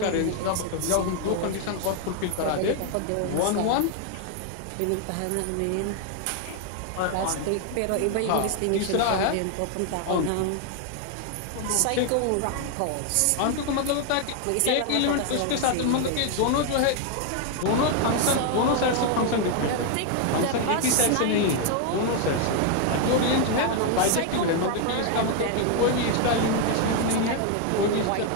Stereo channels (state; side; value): different; both; correlation 0.01